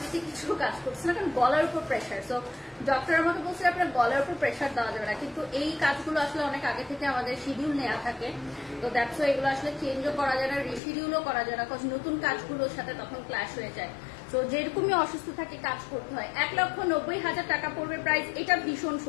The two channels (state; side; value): drops out; right; at 10.8 s